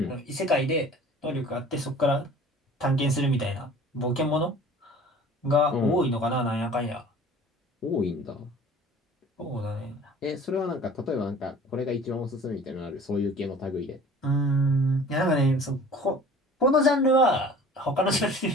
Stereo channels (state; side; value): normal; both; correlation 0.46